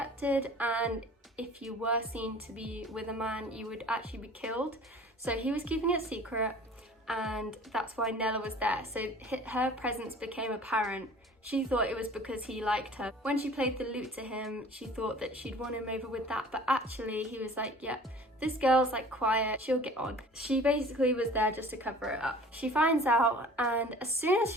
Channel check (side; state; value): both; normal; correlation 0.47